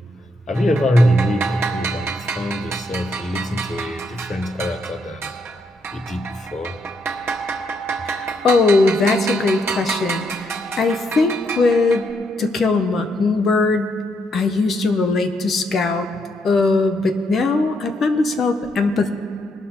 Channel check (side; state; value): both; normal; correlation 0.76